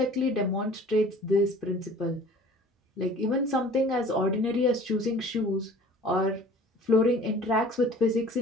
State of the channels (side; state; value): both; normal; correlation 0.48